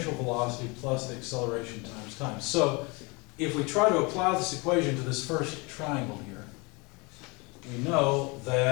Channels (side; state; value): right; quieter; 28.1 dB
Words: velocity plus the acceleration times time. So if we try to apply this equation to this first triangle here, we know